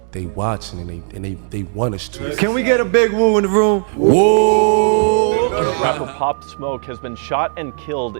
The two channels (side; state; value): left; silent; digital silence